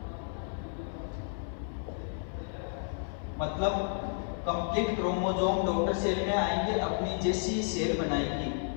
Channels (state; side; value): silent; right; 56 dB below the other